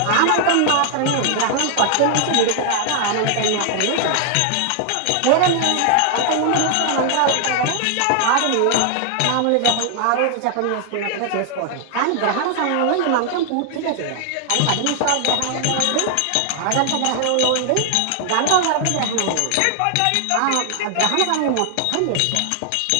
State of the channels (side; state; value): both; different; correlation 0.00